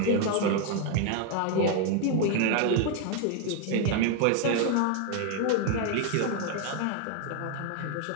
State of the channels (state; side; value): different; both; correlation 0.01